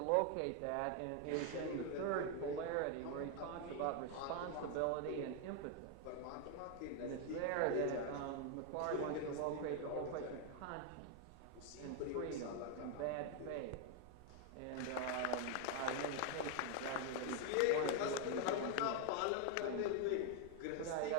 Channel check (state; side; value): different; both; correlation 0.01